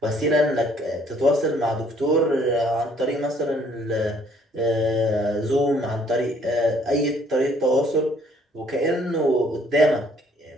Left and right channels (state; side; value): normal; both; correlation 0.62